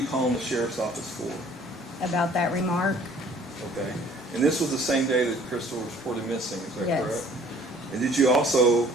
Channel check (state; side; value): normal; both; correlation 0.55